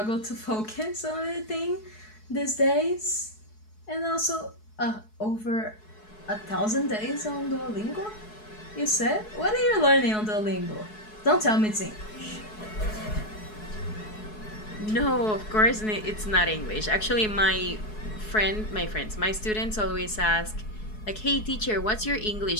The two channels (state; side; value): late; right; 4.7 ms